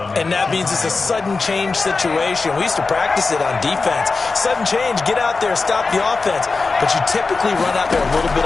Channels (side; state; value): right; quieter; 4.1 dB